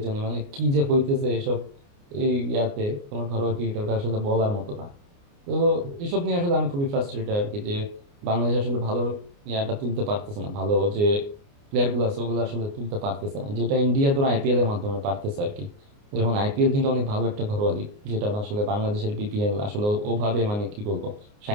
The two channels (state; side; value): late; left; 29 ms